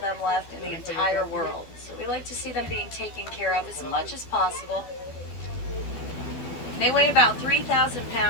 them left in the entire world. So we like to see them being taken care of as much as possible. They weigh about 3,000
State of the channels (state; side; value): late; right; 12 ms